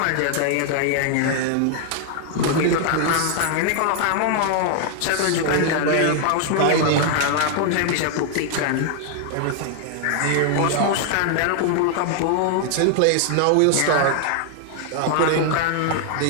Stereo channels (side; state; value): both; different; correlation 0.00